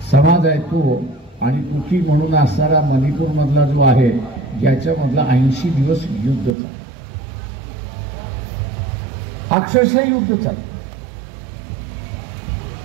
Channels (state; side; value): drops out; left; at 6.6 s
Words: समाज आहे तो आणि कुकी म्हणून असणारा मणिपूरमधला जो आहे ज्याच्यामधला 80 दिवस युद्ध चाललं, अक्षरशः युद्ध चाललं.